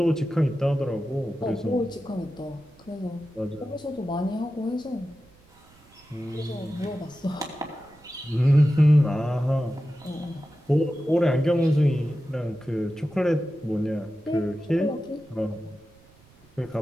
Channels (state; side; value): noise; right; rumble, 28 dB below the sound